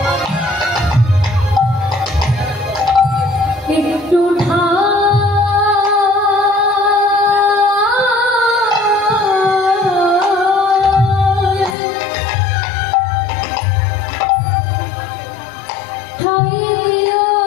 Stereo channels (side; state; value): right; drops out; at 11.8 s